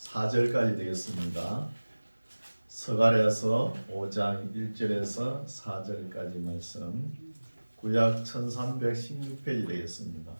되겠습니다. 스가랴서 5장 1절에서 4절까지 말씀, 구약 1316페이지 되겠습니다.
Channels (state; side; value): inverted; both; correlation -1.00